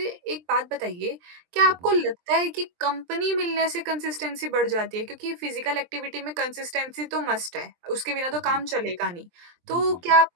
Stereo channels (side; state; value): left; late; 23 ms